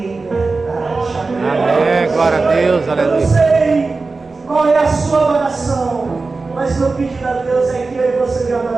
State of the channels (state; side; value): quieter; left; 3.9 dB